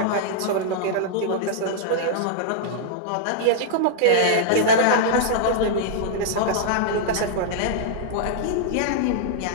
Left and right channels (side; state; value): both; different; correlation -0.02